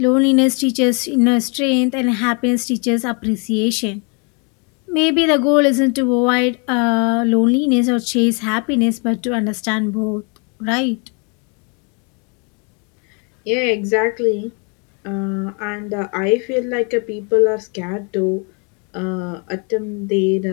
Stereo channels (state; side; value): quieter; right; 34.9 dB